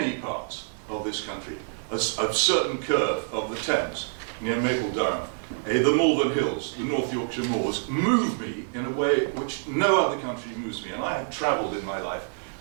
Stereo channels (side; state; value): left; silent; digital silence